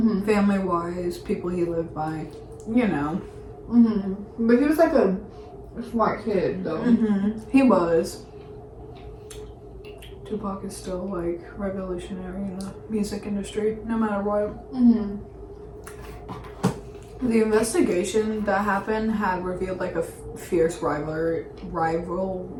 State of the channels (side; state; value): both; identical; correlation 1.00